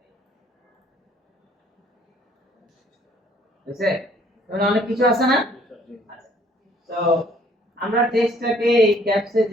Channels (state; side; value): normal; both; correlation 0.61